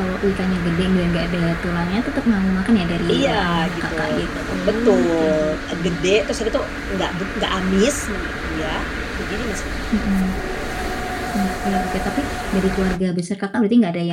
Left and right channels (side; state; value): both; identical; correlation 1.00